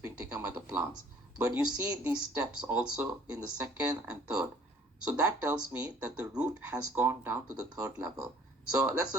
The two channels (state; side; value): normal; both; correlation 0.55